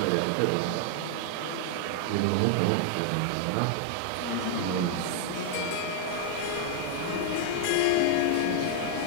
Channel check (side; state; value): both; different; correlation -0.01